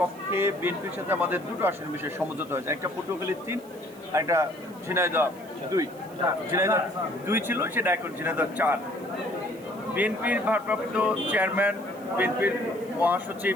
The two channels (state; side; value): noise; right; hiss, 24 dB below the sound